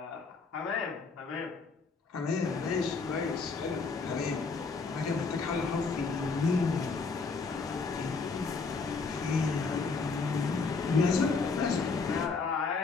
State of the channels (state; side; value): quieter; right; 4.5 dB